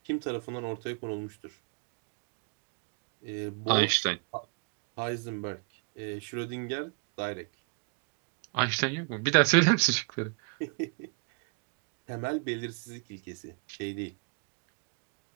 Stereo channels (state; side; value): quieter; left; 36.1 dB